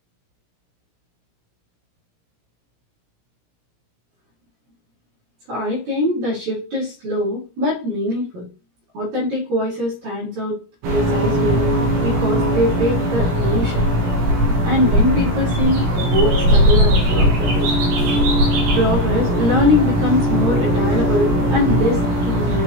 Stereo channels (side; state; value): left; late; 17 ms